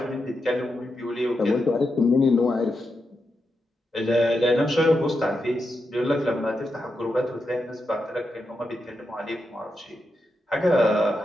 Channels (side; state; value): both; normal; correlation 0.86